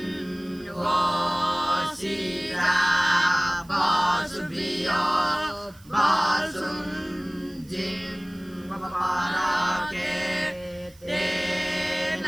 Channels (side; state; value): right; noise; hiss, 26 dB below the sound